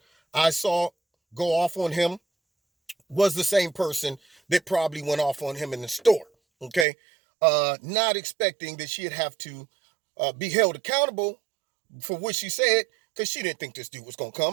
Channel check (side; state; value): left; drops out; at 6.9 s